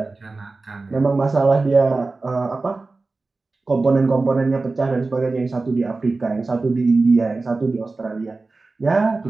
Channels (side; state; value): left; quieter; 3.6 dB